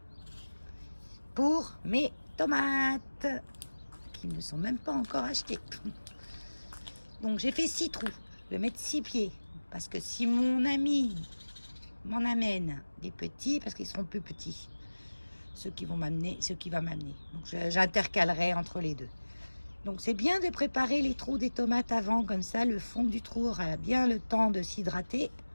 pour mes tomates qui ne sont même pas encore achetées. Donc j'ai fait 6 trous. Je vais mettre 6 pieds parce que si mon ami m'en amène des petits, parce qu'ils seront plus petits, ce qui va m'amener. Donc j'intercalerai entre les deux. Donc c'est bien de préparer les trous des tomates avant, comme ça le fond du trou aura bien le temps de s'hydrater.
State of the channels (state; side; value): inverted; both; correlation -1.00